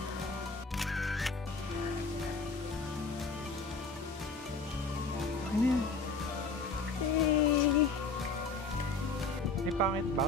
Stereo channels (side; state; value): right; quieter; 4.0 dB